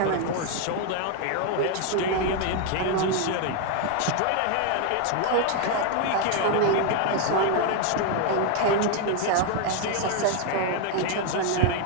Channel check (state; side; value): different; both; correlation 0.01